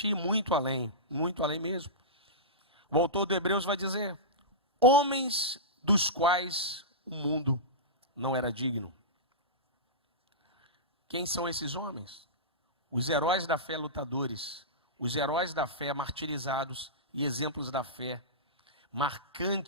ir muito além mesmo. O autor do Hebreus vai dizer, homens dos quais o mundo não era digno. Quem são esses homens? Os heróis da fé lutadores, os heróis da fé martirizados e exemplos da fé,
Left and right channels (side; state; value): both; normal; correlation -0.17